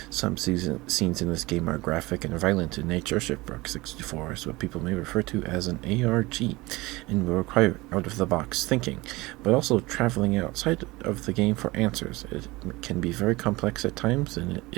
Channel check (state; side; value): quieter; left; 21.5 dB